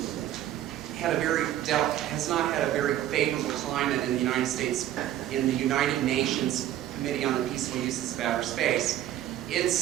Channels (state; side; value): quieter; left; 12.5 dB